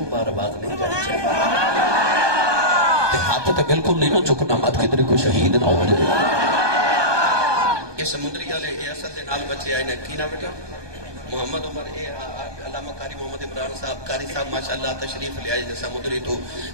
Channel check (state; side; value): late; left; 1.2 ms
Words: بار باز نہیں جانی چاہیے ہاتھ تو بالکل نہیں نہ چکنا مت کدھر کو شہید نہ ہو جائے یہ سمندری والے یہ اصل دے نال بچے آئے نے کی نہ بیٹا محمد عمر علامہ قاری محمد عمران صاحب قاری صاحب ماشاءاللہ تشریف لے آئے سمندری تو